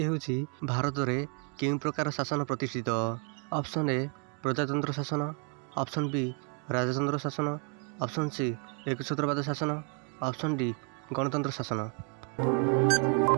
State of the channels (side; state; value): left; quieter; 39.0 dB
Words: होउची भारत रे केउ प्रकार शासन प्रतिष्ठित। ऑप्शन ए प्रजातंत्र शासन, ऑप्शन बी राजतंत्र शासन, ऑप्शन सी एकछत्रवाद शासन, ऑप्शन डी गणतंत्र शासन।